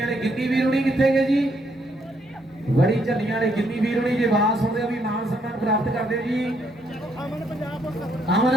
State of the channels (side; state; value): both; normal; correlation 0.72